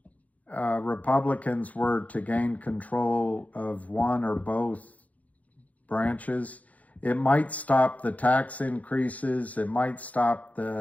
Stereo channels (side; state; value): right; late; 0.071 ms